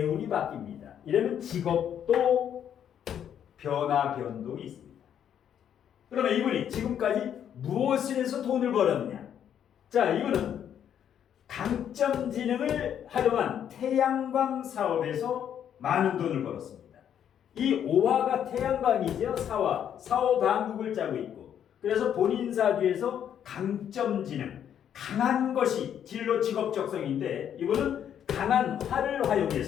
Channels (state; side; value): quieter; right; 9.3 dB